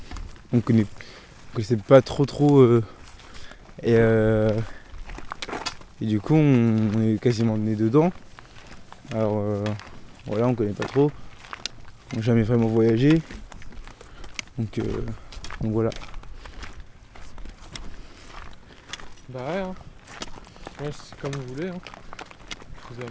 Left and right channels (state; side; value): identical; both; correlation 1.00